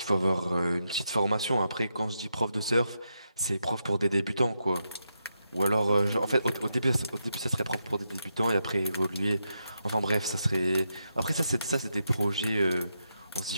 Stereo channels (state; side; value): inverted; both; correlation -0.84